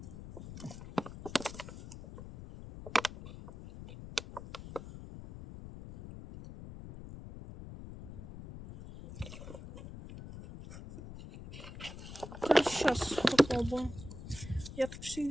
Короче, сейчас попробуем. Я так все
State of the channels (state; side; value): noise; left; rumble, 12 dB below the sound